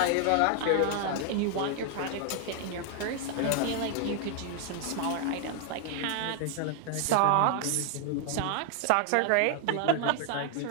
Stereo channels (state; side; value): different; both; correlation 0.00